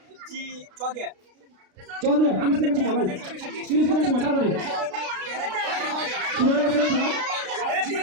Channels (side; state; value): left; late; 32 ms